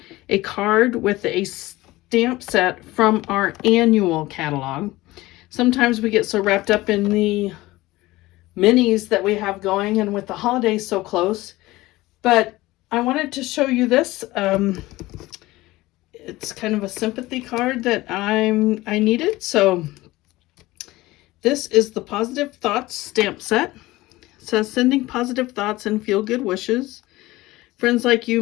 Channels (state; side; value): quieter; right; 18.8 dB